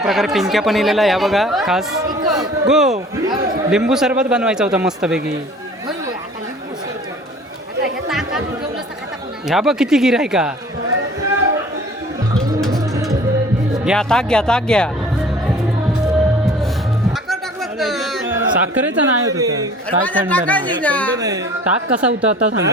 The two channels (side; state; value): both; normal; correlation 0.48